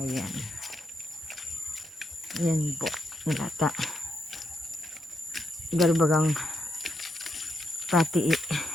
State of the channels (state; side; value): normal; both; correlation 0.81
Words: Ayan po. Lata. Garbagang pati